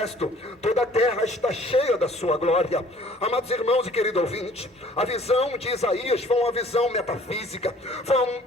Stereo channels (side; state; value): both; normal; correlation 0.54